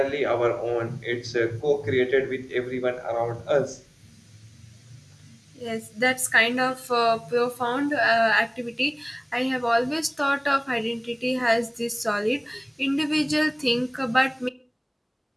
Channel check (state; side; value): identical; both; correlation 1.00